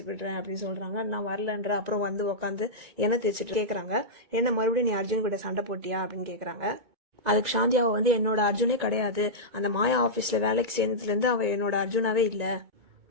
விடுறேன் அப்படின்னு சொல்றாங்க. நான் வரலன்ற. அப்புறம் வந்து உட்காந்து எண்ணெய் தேய்ச்சிட்டு கேக்குறாங்க, என்ன மறுபடியும் நீ அர்ஜுன் கிட்ட சண்டை போட்டியா அப்படின்னு கேக்குறாங்க. அதுக்கு சாந்தியாவை வந்து என்னோட அர்ஜுனே கிடையாது, அந்த மாயா ஆபீஸ்ல வேலைக்கு சேர்ந்ததுல இருந்து அவ என்னோட அர்ஜுனாவே இல்ல.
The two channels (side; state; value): left; late; 2.2 ms